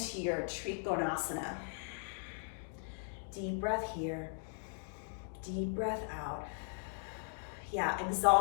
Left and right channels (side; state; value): right; silent; digital silence